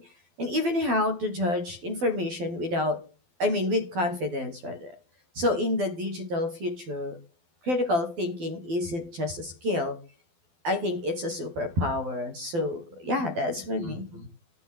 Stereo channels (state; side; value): late; left; 12 ms